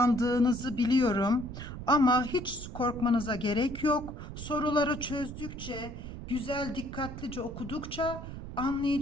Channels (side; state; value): right; noise; rumble, 10 dB below the sound